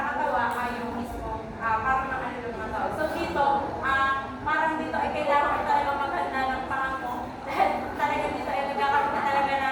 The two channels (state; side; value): identical; both; correlation 1.00